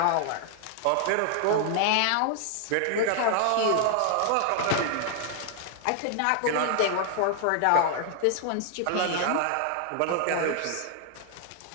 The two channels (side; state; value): both; different; correlation 0.00